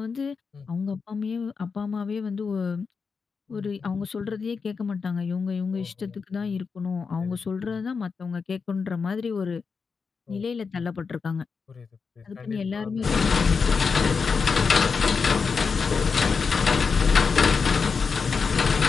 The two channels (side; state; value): right; quieter; 5.3 dB